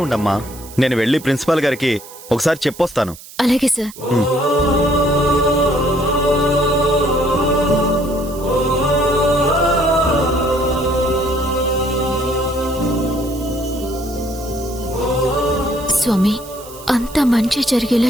ఉండమ్మా. నేను వెళ్ళి ప్రిన్సిపాల్ గారికి ఒకసారి చెప్పొస్తాను. అలాగే సార్. స్వామి, అంత మంచి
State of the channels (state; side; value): noise; right; hiss, 18 dB below the sound